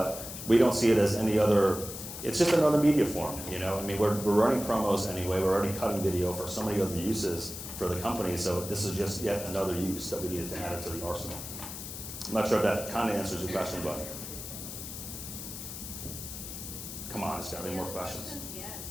we don't see it as any other. It's just another media form. I mean, we're running promos anyway. We're already cutting video for so many other uses for the company. So this is just yet another use that we needed to add it to the arsenal. I'm not sure if that kind of answers your question, but come on, there's got to be more questions. Yes.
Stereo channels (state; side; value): noise; left; hiss, 9 dB below the sound